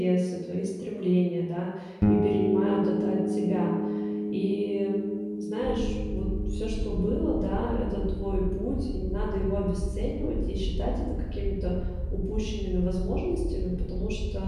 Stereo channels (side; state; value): both; identical; correlation 1.00